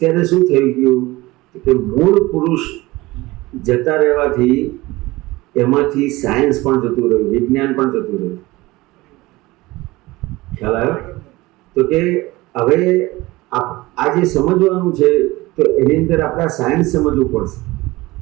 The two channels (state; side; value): quieter; left; 20.2 dB